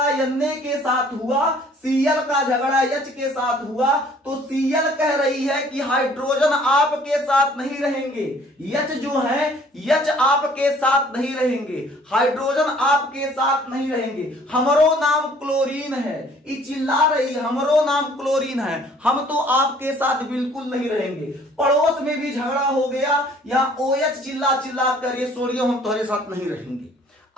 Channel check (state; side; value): normal; both; correlation 0.56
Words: Na के साथ हुआ, Cl का झगड़ा H के साथ हुआ तो Cl कह रही है कि हाइड्रोजन आपके साथ नहीं रहेंगे, H जो है H आपके साथ नहीं रहेंगे, हाइड्रोजन आपके साथ नहीं रहेंगे, हमरो नाम क्लोरीन है। ये चिल्ला रही हमरो नाम क्लोरीन है, हम तो आपके साथ बिल्कुल नहीं रहेंगे। पड़ोस में भी झगड़ा हो गया, यहाँ OH चिल्ला कर ये सोडियम हम तुम्हारे साथ नहीं रहेंगे।